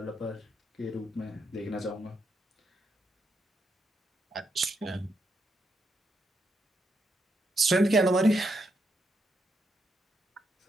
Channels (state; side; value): normal; both; correlation 0.81